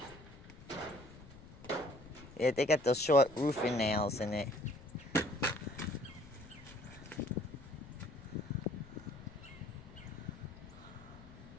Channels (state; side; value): noise; left; rumble, 17 dB below the sound